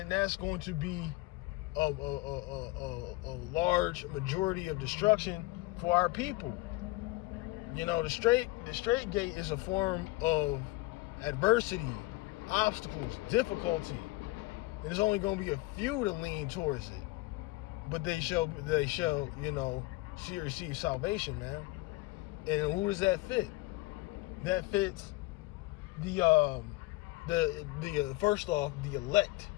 going to be a large majority of destruction for our people. You know, the straight gate is a form of adversity, obstacles, difficulty. And there's only going to be a few to lean towards it. But they shall, you know, see or receive salvation, man. And who does that fit? That fits the first off, the elect.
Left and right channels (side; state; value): right; quieter; 20.5 dB